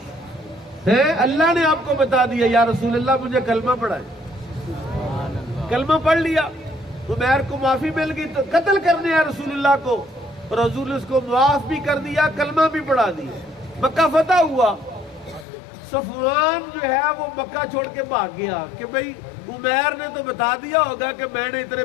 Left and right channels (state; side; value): drops out; right; at 15.5 s